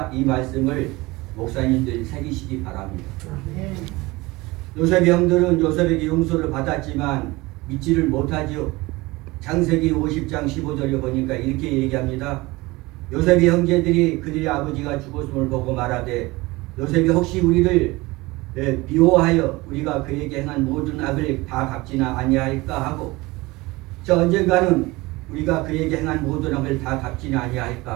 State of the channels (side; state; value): left; quieter; 21.7 dB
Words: 이 말씀을 목사님들이 새기시기 바랍니다. 요셉의 형들은 요셉에게 용서를 받았지만 믿지를 못하지요. 창세기 50장 15절에 보니까 이렇게 얘기합니다. 요셉의 형제들이 그들의 아버지가 죽었음을 보고 말하되 요셉이 혹시 우리를 미워하여 우리가 그에게 행한 모든 악을 다 갚지나 아니할까 하고, 저 언젠가는 우리가 그에게 행한 모든 악을 다 갚지나